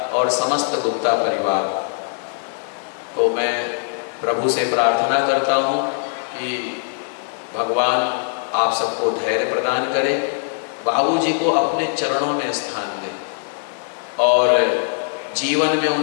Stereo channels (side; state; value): right; silent; digital silence